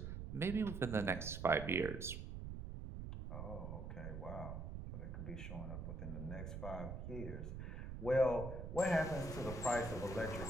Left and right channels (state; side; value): noise; right; rumble, 6 dB below the sound